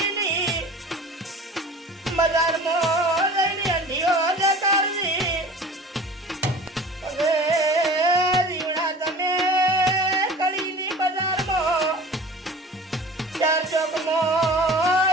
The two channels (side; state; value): both; normal; correlation 0.41